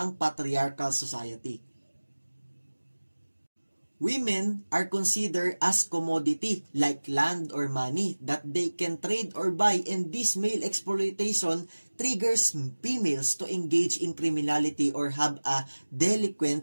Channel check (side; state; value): both; inverted; correlation -1.00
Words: patriarchal society. Women are considered as commodity like land or money that they can trade or buy, and this male exploitation triggers females to engage in criminality or have a